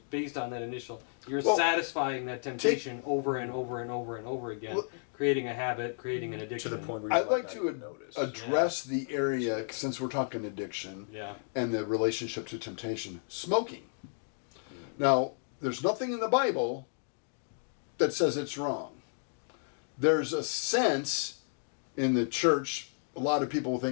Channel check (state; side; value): silent; right; digital silence